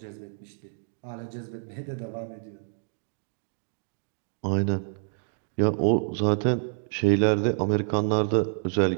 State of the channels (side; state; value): left; silent; digital silence